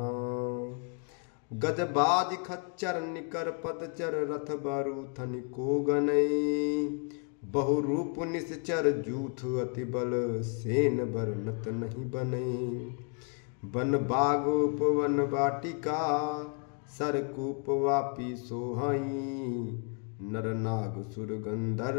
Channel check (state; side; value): quieter; right; 38.0 dB